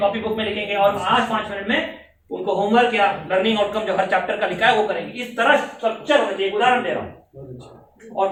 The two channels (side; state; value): both; identical; correlation 1.00